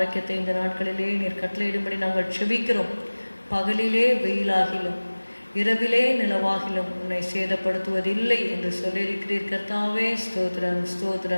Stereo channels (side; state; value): both; inverted; correlation -1.00